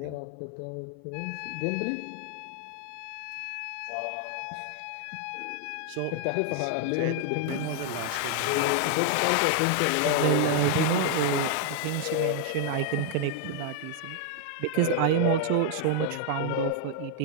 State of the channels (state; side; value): different; both; correlation 0.00